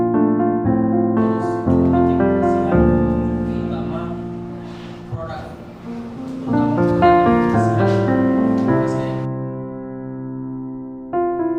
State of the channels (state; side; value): identical; both; correlation 1.00